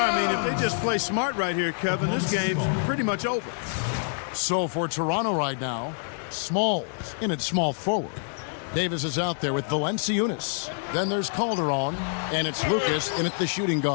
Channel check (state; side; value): silent; right; 61 dB below the other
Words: I mean, if they just play smart right here, Kevin, this game's pretty much over. So for Toronto right now, Smalls in at small forward. Davis is out there with Valenciunas. Then there's Calderon, and it's Lucas in at the shooting